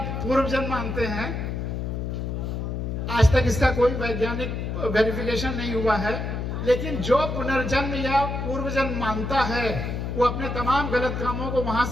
पूर्व जन्म मानते हैं। आज तक इसका कोई वैज्ञानिक वेरिफिकेशन नहीं हुआ है, लेकिन जो पुनर्जन्म या पूर्व जन्म मानता है, वो अपने तमाम गलत कामों को वहां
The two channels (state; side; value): noise; left; hum, 3 dB below the sound